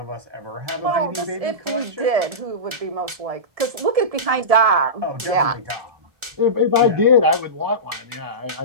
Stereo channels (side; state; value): left; late; 1.4 ms